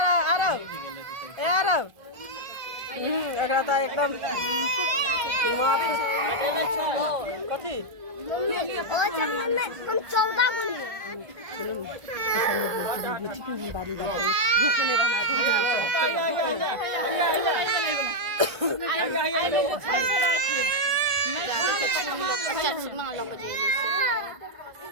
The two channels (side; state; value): left; late; 1.5 ms